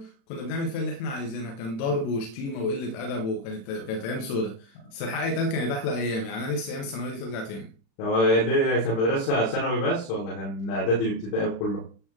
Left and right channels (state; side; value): late; right; 36 ms